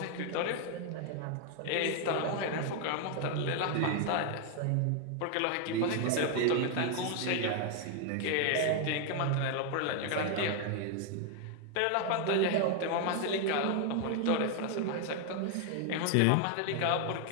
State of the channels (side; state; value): both; different; correlation 0.00